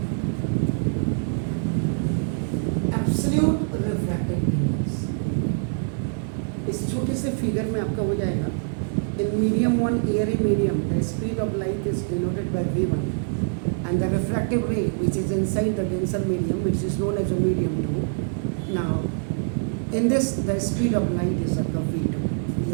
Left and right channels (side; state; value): left; silent; digital silence